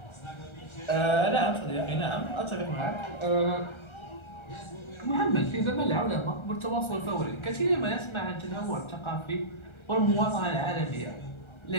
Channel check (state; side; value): late; right; 1.3 ms